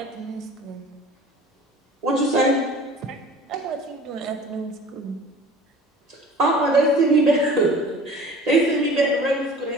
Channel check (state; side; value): normal; both; correlation 0.44